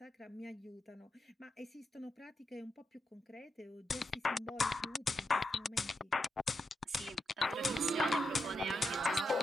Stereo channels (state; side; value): normal; both; correlation 0.84